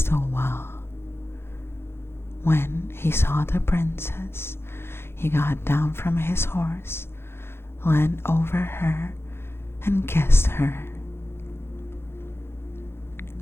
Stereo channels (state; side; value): late; right; 0.12 ms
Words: wall. When he saw the princess, he got down from his horse, leaned over her, and kissed her.